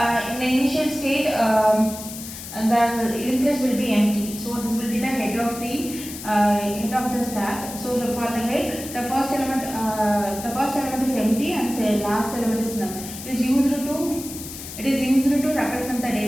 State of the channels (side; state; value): left; noise; hiss, 11 dB below the sound